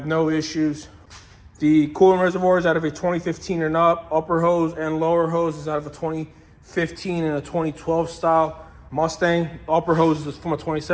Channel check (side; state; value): both; identical; correlation 1.00